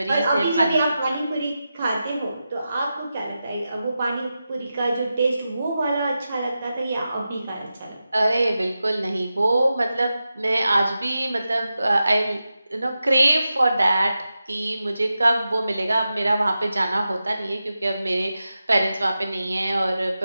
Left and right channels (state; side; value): inverted; both; correlation -0.91